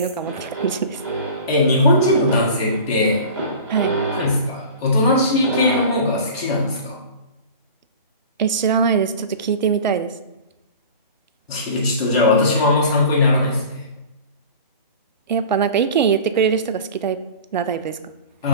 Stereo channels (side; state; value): both; inverted; correlation -0.38